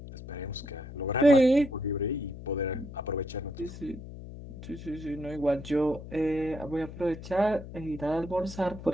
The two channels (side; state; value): left; noise; hum, 13 dB below the sound